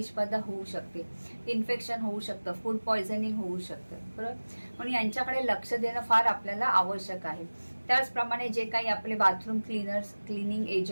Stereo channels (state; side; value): inverted; both; correlation -1.00